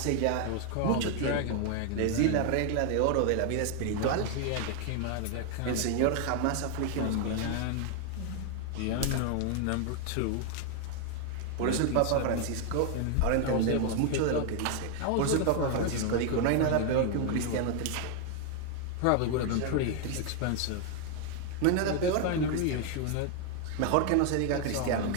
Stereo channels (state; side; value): different; both; correlation 0.00